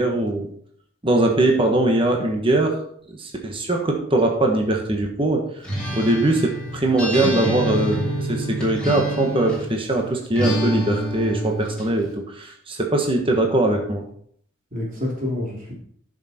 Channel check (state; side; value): normal; both; correlation 0.54